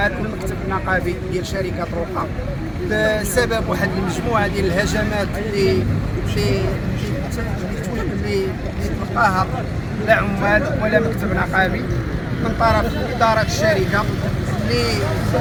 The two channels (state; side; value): identical; both; correlation 1.00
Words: المكتب النقابي ديال شركة روقا بسبب واحد المجموعة ديال الهجمات اللي تلقاها لا عمال ولا مكتب نقابي من طرف إدارة الشركة اللي